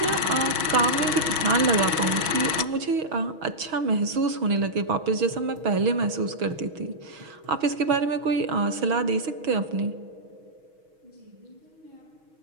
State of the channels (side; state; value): left; late; 6.3 ms